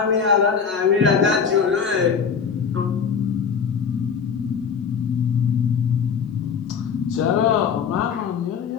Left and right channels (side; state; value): right; quieter; 6.5 dB